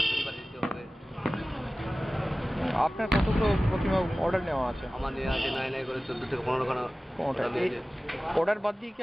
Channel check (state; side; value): normal; both; correlation 0.97